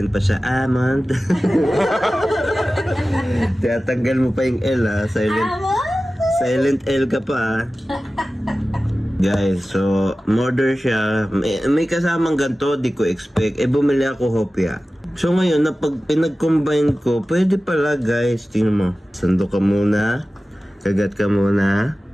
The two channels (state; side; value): normal; both; correlation 0.96